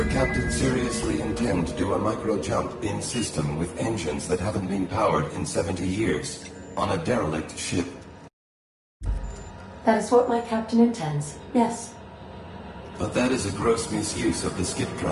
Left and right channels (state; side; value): identical; both; correlation 1.00